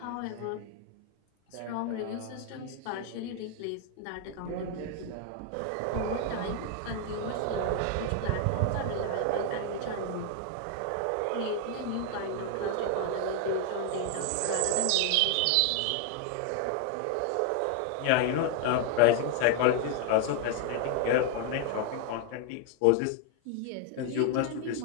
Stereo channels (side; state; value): both; different; correlation 0.00